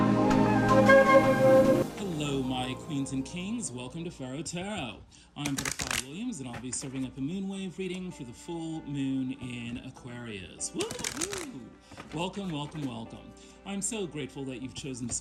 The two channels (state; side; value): identical; both; correlation 1.00